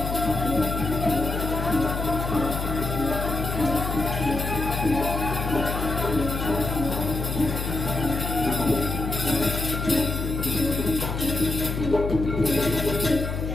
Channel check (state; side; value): noise; left; hum, 3 dB below the sound